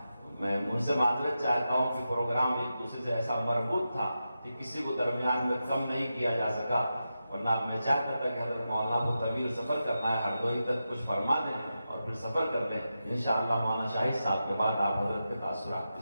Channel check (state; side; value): inverted; both; correlation -0.90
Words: میں ان سے معذرت چاہتا ہوں کہ پروگرام ایک دوسرے سے ایسا مربوط تھا کہ کسی کو درمیان میں کم نہیں کیا جا سکا، ورنہ میں چاہتا تھا کہ حضرت مولانا کو طویل سفر کرنا ہے، ہردوئی تک کچھ فرما دیں اور پھر سفر کر لیں۔ انشاءاللہ مولانا شاہد صاحب کے بعد آپ حضرت کے تاثرات